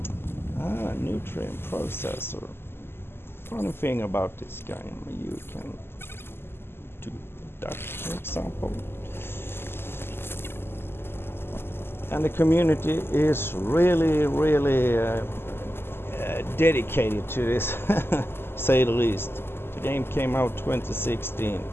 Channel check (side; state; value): right; late; 0.11 ms